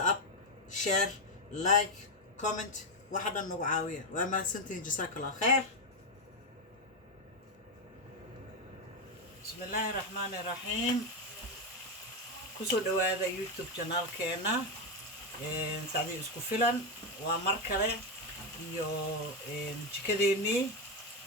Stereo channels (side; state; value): both; normal; correlation 0.07